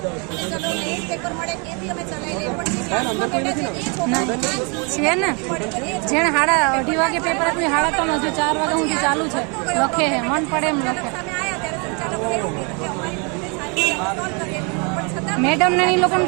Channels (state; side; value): quieter; left; 33.7 dB